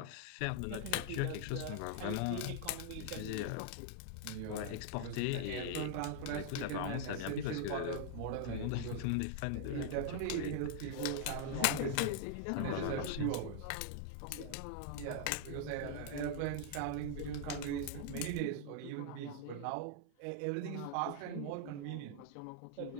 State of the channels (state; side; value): different; both; correlation 0.00